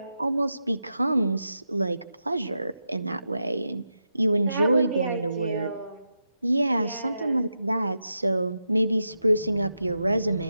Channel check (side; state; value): both; inverted; correlation -0.87